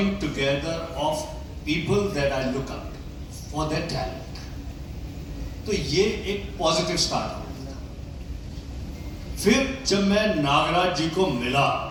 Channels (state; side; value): identical; both; correlation 1.00